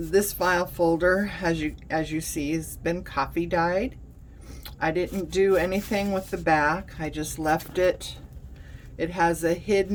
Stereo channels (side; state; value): both; identical; correlation 1.00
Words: file folder, as you see, has been coffee dyed. I didn't do anything with the back. I just left it. It has a